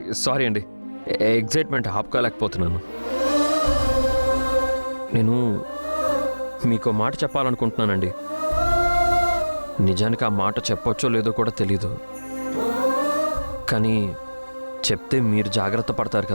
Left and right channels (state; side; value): inverted; both; correlation -1.00